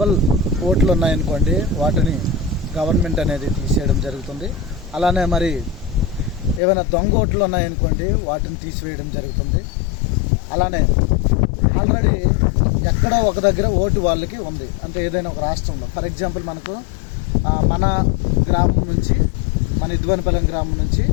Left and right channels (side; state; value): right; drops out; at 6.6 s